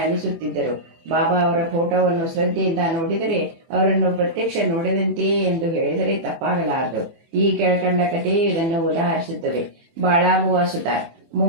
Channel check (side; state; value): left; late; 24 ms